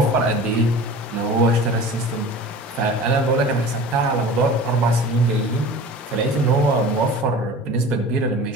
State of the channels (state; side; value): normal; both; correlation 0.39